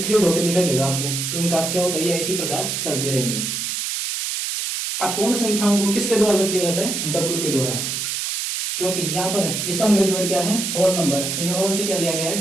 3 डॉटें दिखाई देगा आपको, तो उनका अर्थ क्या होता है, यह इसी प्रकार चलती रहेंगी। अब पूर्ण संख्याओं को किसके द्वारा व्यक्त किया जाता है, डब्ल्यू के द्वारा, क्योंकि यहाँ पर इसका अंग्रेजी वर्ड क्या है, होल नंबर, तो ये होल से क्या लिया गया है,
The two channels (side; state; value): right; noise; hiss, 2 dB below the sound